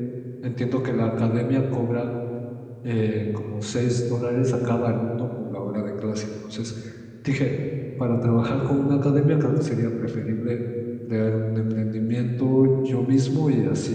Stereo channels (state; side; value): identical; both; correlation 1.00